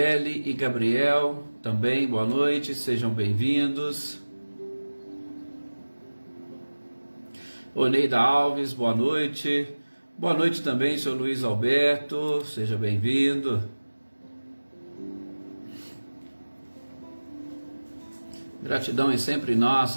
e Gabriel, também boa noite, sejam bem-vindos, Oneida Alves, boa noite também, seu Luiz Alberto, seja bem-vindo, gratidão é sempre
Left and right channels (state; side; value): inverted; both; correlation -1.00